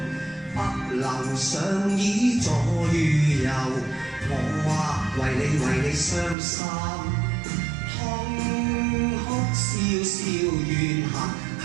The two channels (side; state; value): left; drops out; at 6.4 s